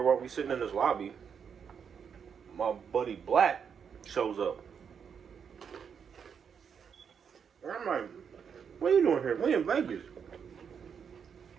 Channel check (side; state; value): left; quieter; 7.0 dB